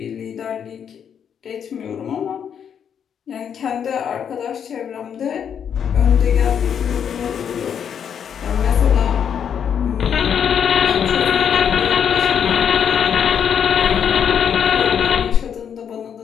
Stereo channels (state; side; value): quieter; right; 8.1 dB